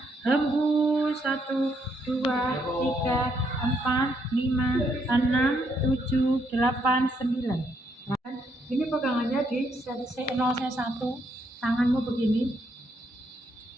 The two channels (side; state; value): both; normal; correlation 0.74